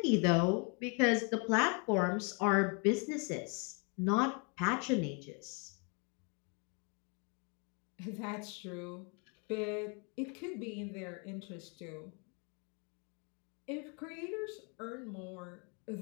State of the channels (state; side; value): quieter; right; 35.2 dB